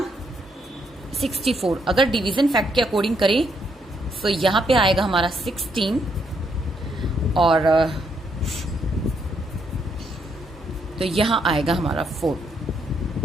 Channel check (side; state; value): both; normal; correlation 0.75